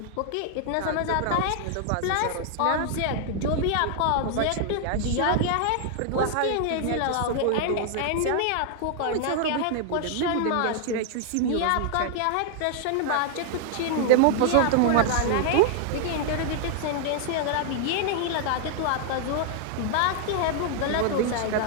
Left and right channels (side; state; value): both; different; correlation 0.00